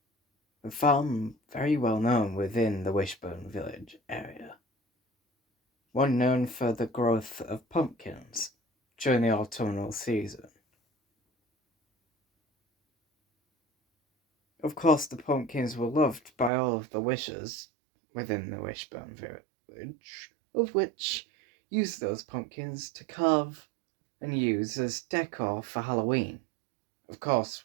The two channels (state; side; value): drops out; left; at 16.5 s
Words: very well known within the Wishbone village area. One known for the growth of pumpkins during the autumnal season. Of course, the pumpkins were loved by all of the wishers within the Wishbone village, of which used those pumpkins to carve and use as decor for Halloween. Of course,